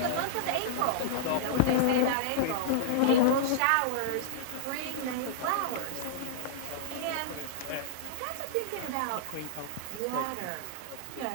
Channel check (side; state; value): both; different; correlation -0.02